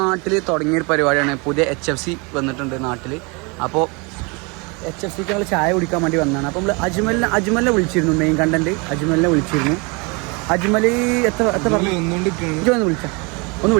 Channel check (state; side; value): quieter; left; 29.8 dB